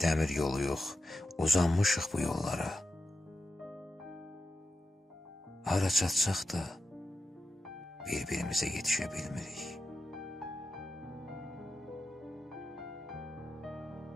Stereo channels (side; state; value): both; normal; correlation 0.89